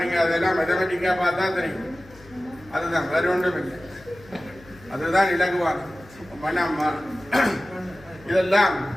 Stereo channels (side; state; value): left; noise; hum, 23 dB below the sound